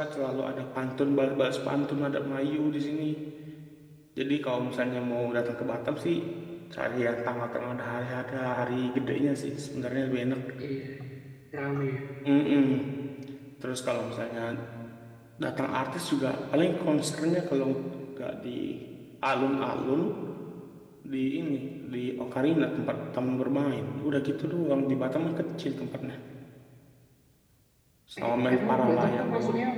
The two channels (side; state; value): both; identical; correlation 1.00